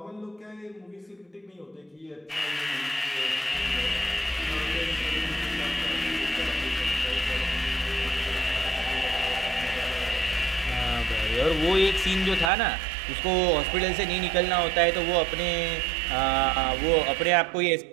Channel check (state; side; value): drops out; left; at 12.5 s